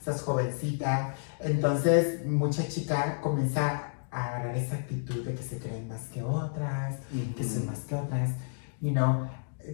jovencita, entonces mucha chica comienza a agarrar esa actitud de que se creen más que otras, que son más que otras,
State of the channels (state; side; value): silent; right; digital silence